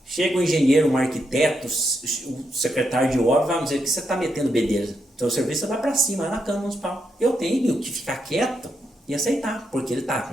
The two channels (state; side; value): normal; both; correlation 0.82